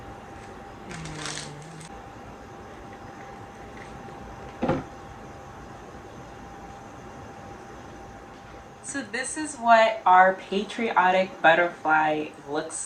So this is what our patriotic butterfly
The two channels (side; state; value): both; identical; correlation 1.00